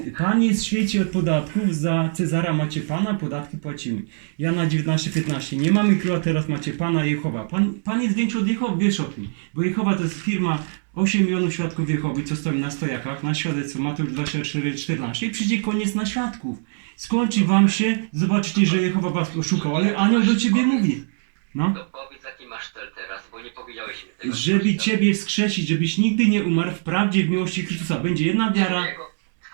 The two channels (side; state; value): left; silent; 64 dB below the other